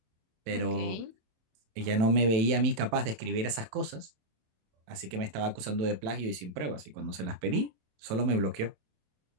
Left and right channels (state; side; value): late; left; 27 ms